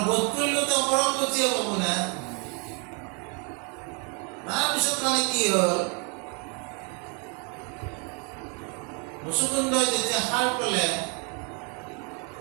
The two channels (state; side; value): quieter; left; 36.0 dB